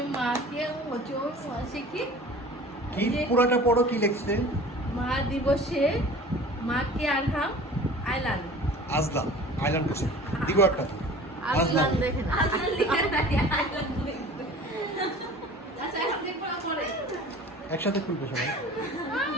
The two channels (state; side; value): normal; both; correlation 0.43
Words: মাকে ওজন শিখি কি পুরাটা পড়ো, কি লিখছে? মা দিবসে মাকে আরহাম আইলান আজলাম আইল্যান্ড করছে, দিব একটা আজলান দেখেন আজলান লিখে নাই আইলান লিখছে। আচ্ছা এখন দেখব পরে। একসাথে খুলবে সবাই।